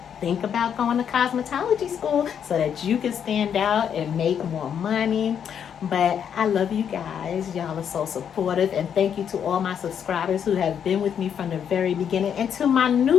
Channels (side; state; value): right; quieter; 8.2 dB